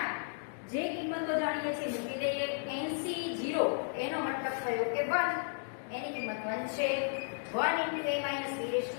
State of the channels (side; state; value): right; silent; digital silence